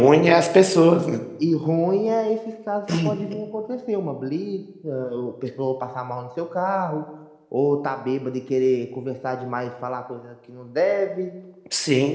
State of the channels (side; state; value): both; identical; correlation 1.00